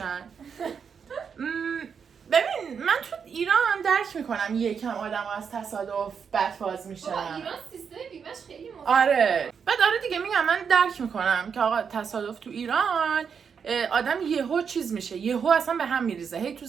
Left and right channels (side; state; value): left; quieter; 6.6 dB